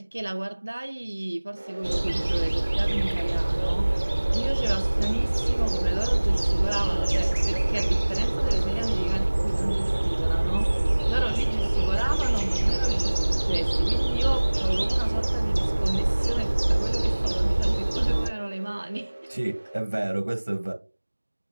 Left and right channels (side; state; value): both; inverted; correlation -1.00